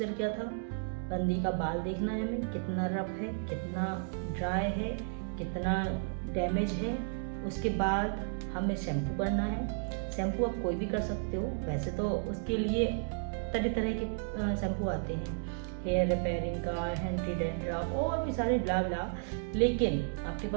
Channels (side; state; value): left; silent; digital silence